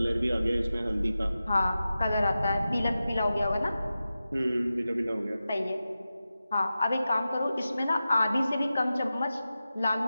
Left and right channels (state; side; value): inverted; both; correlation -0.93